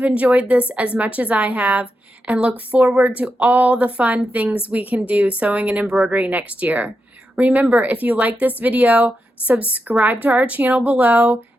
enjoyed this as much as I have and look forward to all the fun things we can do sewing and embroidery next year. Remember, if you like this video, subscribe to our channel below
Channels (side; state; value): both; normal; correlation 0.87